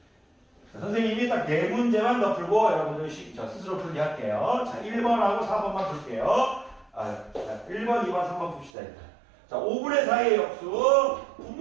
선생님이 딱 4문제만 더 풀고 여러분들 스스로 풀게 할게요. 자, 1번하고 4번만 풀게요. 1번, 2번, 3번 풉시다. 일단. 자, 5분의 4의 역수,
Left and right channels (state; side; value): drops out; left; at 8.7 s